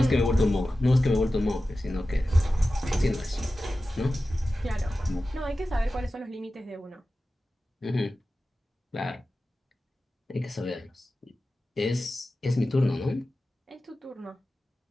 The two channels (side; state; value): both; normal; correlation 0.94